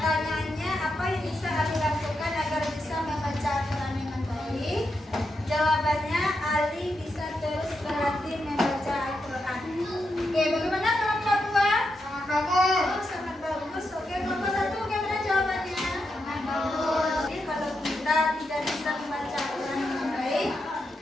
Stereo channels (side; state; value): both; normal; correlation 0.85